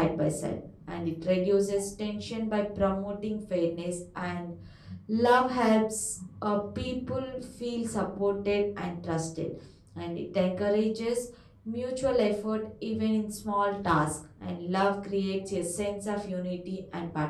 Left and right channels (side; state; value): both; identical; correlation 1.00